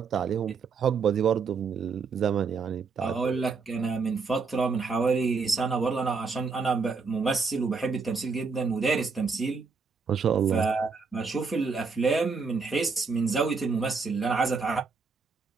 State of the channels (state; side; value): quieter; left; 4.9 dB